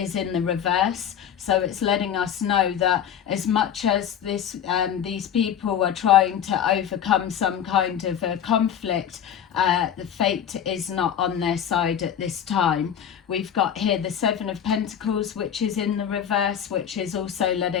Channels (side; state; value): right; quieter; 9.0 dB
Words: in the reverse. So it's letting us know that as much as these people are trying to overcome some kind of a conflict, the fate is not on their side at this time. We've got here the Seven of Pentacles, which is in the reverse, which is also